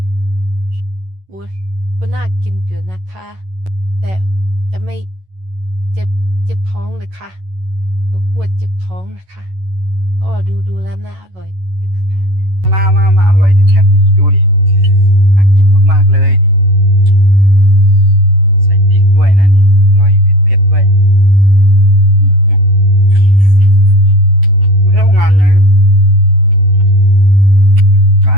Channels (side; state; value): left; late; 11 ms